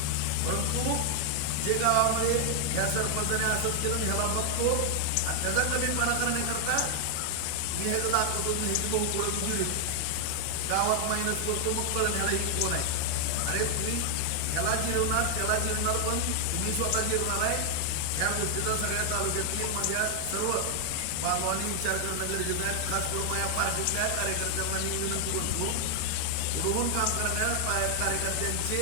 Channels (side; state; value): both; different; correlation 0.00